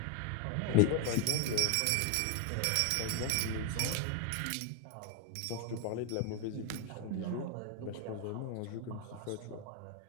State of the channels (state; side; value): different; both; correlation 0.01